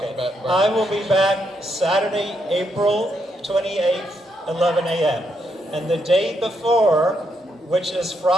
about environment. I will be back Saturday, April 28th, 11 a.m. And the day before, which is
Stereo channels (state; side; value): normal; both; correlation 0.78